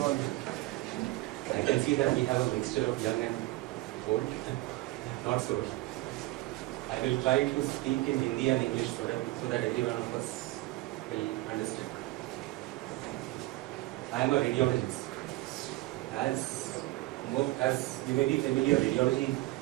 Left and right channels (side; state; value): left; quieter; 19.3 dB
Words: I can see that we have a mixture of young and old. Not so. I will try to speak in Hindi and English so that every one of us will understand. I am a radiologist. As you may be familiar, radiology